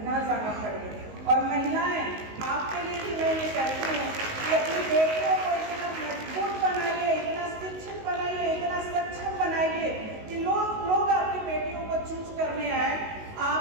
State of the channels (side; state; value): left; late; 19 ms